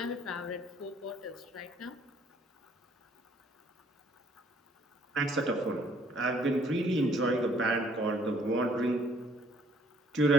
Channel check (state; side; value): normal; both; correlation 0.61